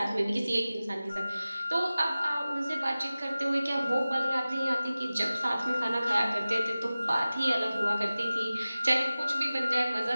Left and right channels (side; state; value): both; inverted; correlation -0.96